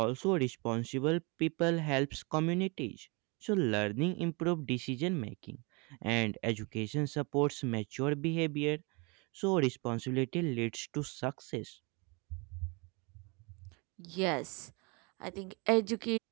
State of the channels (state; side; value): quieter; left; 29.9 dB